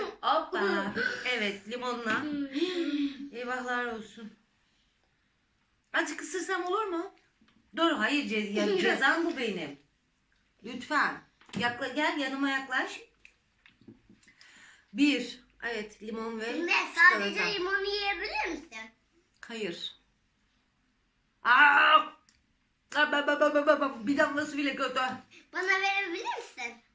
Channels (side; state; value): both; identical; correlation 1.00